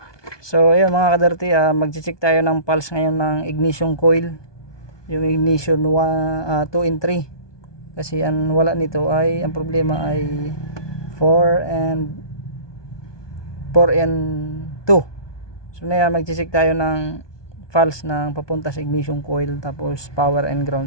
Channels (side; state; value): right; late; 1.2 ms